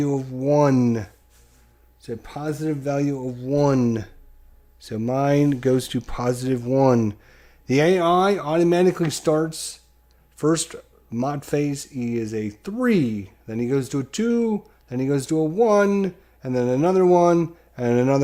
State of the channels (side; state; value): both; identical; correlation 1.00